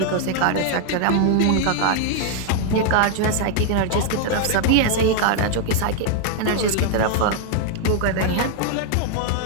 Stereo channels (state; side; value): different; both; correlation 0.00